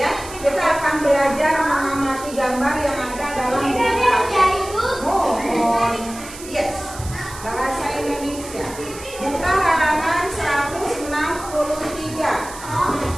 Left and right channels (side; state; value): right; noise; hiss, 14 dB below the sound